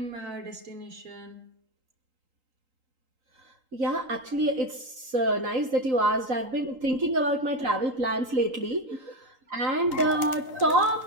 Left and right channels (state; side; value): late; left; 3.8 ms